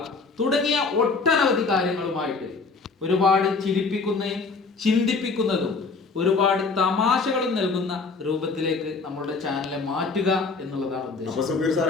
തുടങ്ങിയ ഒട്ടനവധി കാര്യങ്ങളുമായിട്ട് ഒരുപാട് ചിരിപ്പിക്കുന്നതും ചിന്തിപ്പിക്കുന്നതും ഒരുപാട് തമാശകളും നൽകുന്ന രൂപത്തിലേക്ക് നമ്മുടെ ചാനലിനെ മാറ്റുക എന്നുള്ളതാണ് ഉദ്ദേശം. അപ്പൊ സുബീർ സാർ,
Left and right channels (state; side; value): quieter; right; 4.3 dB